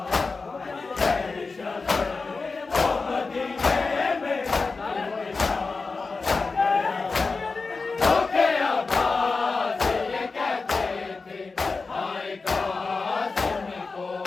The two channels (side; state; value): right; quieter; 4.2 dB